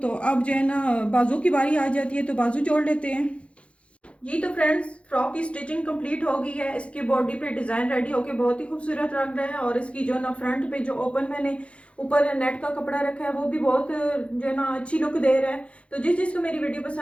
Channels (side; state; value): right; late; 0.061 ms